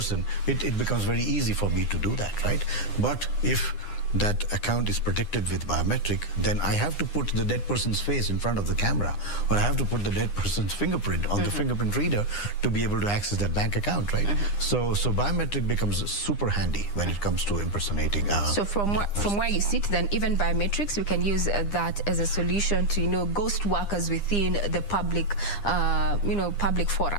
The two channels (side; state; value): right; late; 9.9 ms